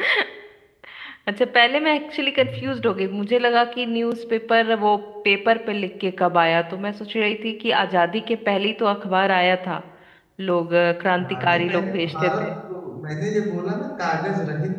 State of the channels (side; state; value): both; identical; correlation 1.00